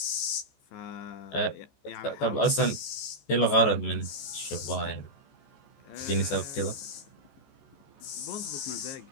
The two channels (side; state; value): right; late; 14 ms